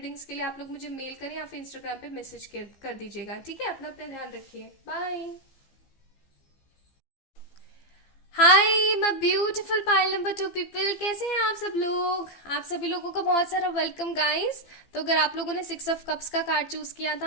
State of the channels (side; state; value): right; late; 15 ms